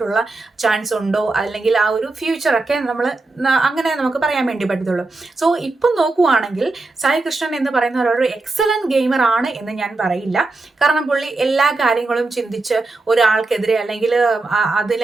ചാൻസ് ഉണ്ടോ അല്ലെങ്കിൽ ആ ഒരു ഫ്യൂച്ചറൊക്കെ നമ്മൾ അങ്ങനെ നമുക്ക് പറയാൻ വേണ്ടി പറ്റത്തുള്ളൂ. സോ ഇപ്പം നോക്കുവാണെങ്കിൽ സായി കൃഷ്ണൻ എന്ന് പറയുന്ന ഒരു എക്സലന്റ് ഗെയിമർ ആണ് എന്ന് ഞാൻ പറയില്ല. കാരണം പുള്ളി എല്ലാ കാര്യങ്ങളും ചിന്തിച്ച് ഒരാൾക്കെതിരെ അല്ലെങ്കിൽ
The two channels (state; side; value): quieter; left; 3.3 dB